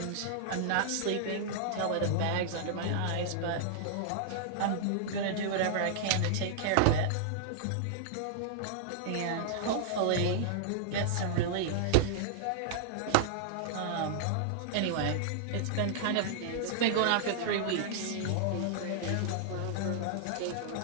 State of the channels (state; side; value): different; both; correlation -0.01